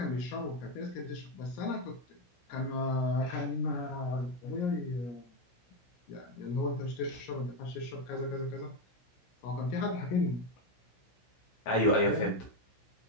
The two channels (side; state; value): right; late; 16 ms